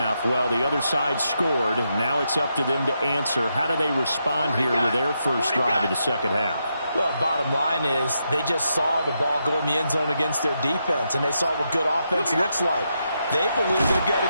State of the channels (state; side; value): inverted; both; correlation -0.83